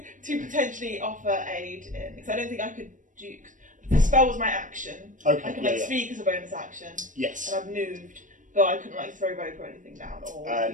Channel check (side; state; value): left; late; 0.37 ms